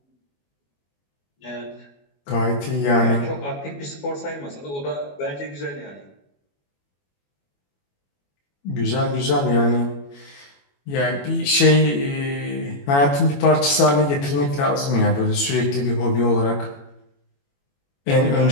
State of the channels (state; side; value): late; right; 21 ms